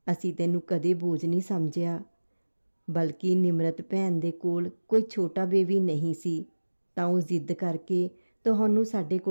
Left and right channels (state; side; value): inverted; both; correlation -1.00